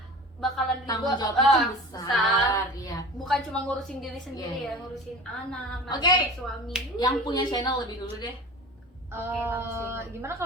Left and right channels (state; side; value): normal; both; correlation 0.37